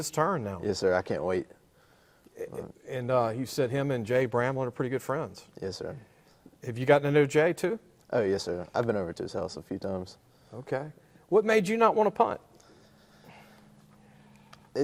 turn now. Yes, sir. I can't wait. And you said him and Jay Bramlett are pretty good friends. Yes, sir. Have you gotten to know Jay too? Oh, yes, sir. I've been over to his house a few times. Okay. What made you not want to punt?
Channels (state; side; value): identical; both; correlation 1.00